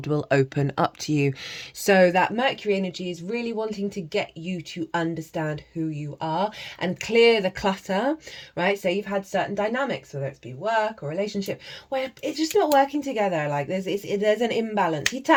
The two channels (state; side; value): identical; both; correlation 1.00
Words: will open up to you. So that Mercury energy is really wanting to get you to understand who you are and clear the clutter, right? So you've had certain dynamics, whether it's be work or relationship, where it's just not working together. Like there's an imbalance.